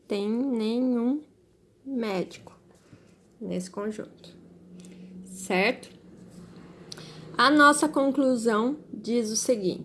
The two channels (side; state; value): both; identical; correlation 1.00